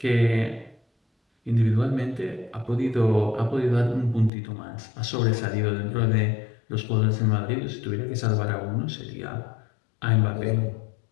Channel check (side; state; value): right; drops out; at 4.3 s